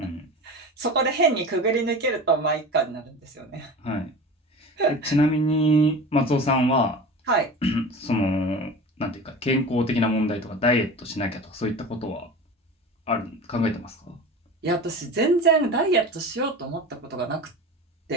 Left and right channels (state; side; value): normal; both; correlation 0.33